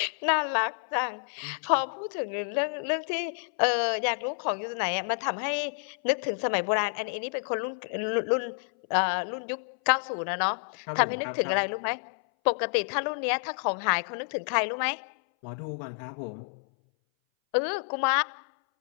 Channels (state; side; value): silent; right; 59 dB below the other